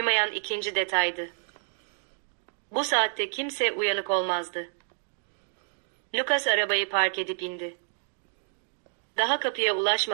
ikinci detaydı. Bu saatte kimse uyanık olmazdı. Lucas arabayı park edip indi. Daha kapıya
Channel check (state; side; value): silent; left; digital silence